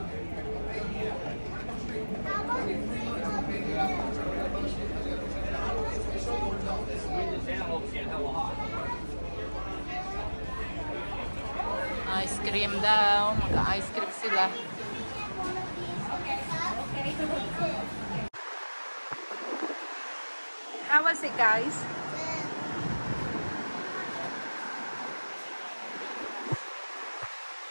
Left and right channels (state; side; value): inverted; both; correlation -1.00